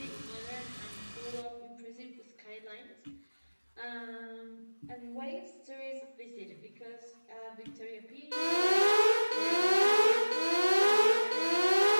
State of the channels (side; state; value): both; inverted; correlation -1.00